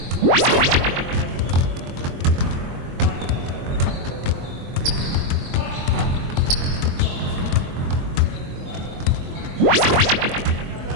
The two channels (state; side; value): late; left; 23 ms